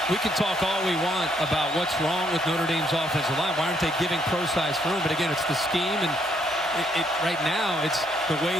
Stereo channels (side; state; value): both; normal; correlation 0.71